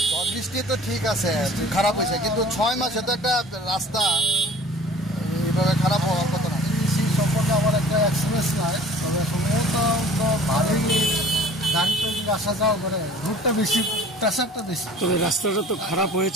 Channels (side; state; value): both; normal; correlation 0.48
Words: ঝড় বৃষ্টি তো ঠিক আছে, খারাপ হয়েছে, কিন্তু 6 মাসে তো একটা রাস্তা এইভাবে খারাপ হওয়ার কথা না। সেই সম্পর্কে আমার একটা এক্সপিরিয়েন্স নাই, তবে সম্ভবত তো ভালোই গাড়ি তো আসা যাওয়া করে, রোডটা বেশি, প্রেশারটা বেশি। তবে রাস্তাটা তো খারাপ